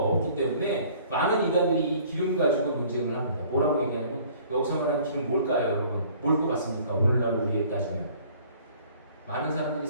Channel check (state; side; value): inverted; both; correlation -0.54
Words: 때문에 많은 이단들이 이 기름 가지고 논쟁을 합니다. 뭐라고 얘기하냐면, 여기서 말하는 기름 뭘까요, 여러분? 뭘 것 같습니까? 오늘날 우리에 따지면 많은 사람들이